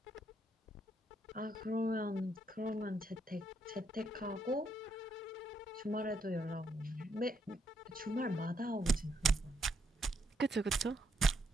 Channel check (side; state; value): both; normal; correlation 0.76